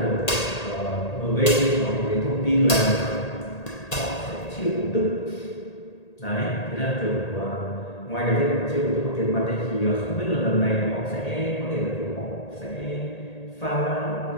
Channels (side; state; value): right; late; 1.8 ms